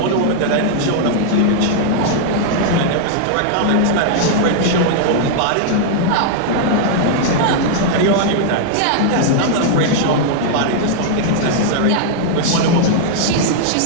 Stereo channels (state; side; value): different; both; correlation -0.01